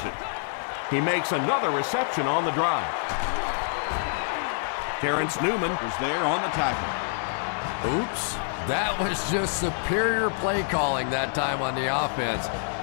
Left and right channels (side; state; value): right; silent; digital silence